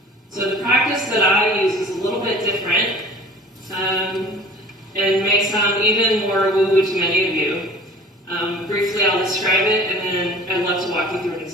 So the practice that I use is a little bit different, and may sound even more woo-woo to many of you. Briefly, I'll describe it, and then I'd love to walk you through an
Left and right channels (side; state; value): both; normal; correlation 0.45